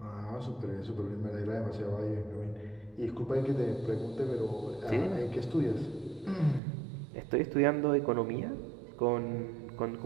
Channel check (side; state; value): left; drops out; at 6.6 s